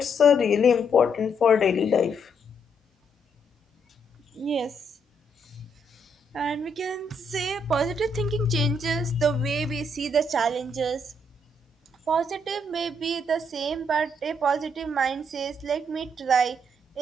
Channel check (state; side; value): normal; both; correlation 0.74